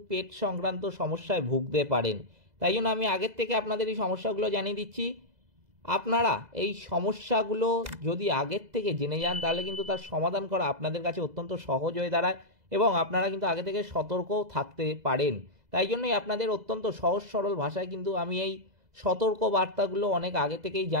পেট সংক্রান্ত সমস্যায় ভুগতে পারেন। তাই জন্য আমি আগের থেকে আপনাদের এই সমস্যাগুলো জানিয়ে দিচ্ছি। আপনারা এই সমস্যাগুলো যদি আগের থেকে জেনে যান তাহলে কিন্তু তার সমাধান করা আপনাদের কাছে অত্যন্ত সহজ হয়ে দাঁড়ায় এবং আপনারা কিন্তু আগে থেকে সতর্কও থাকতে পারেন। তাই জন্যই আপনাদের অত্যন্ত সহজ সরল ভাষায় কিন্তু আমি এই সতর্ক বার্তাগুলো অনেক আগে থেকেই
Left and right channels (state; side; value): late; left; 2.0 ms